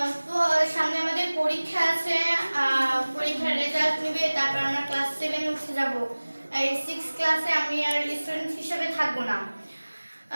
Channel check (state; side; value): inverted; both; correlation -1.00